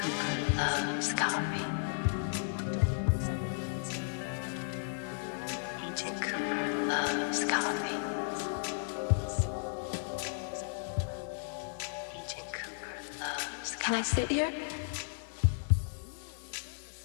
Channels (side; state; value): right; silent; digital silence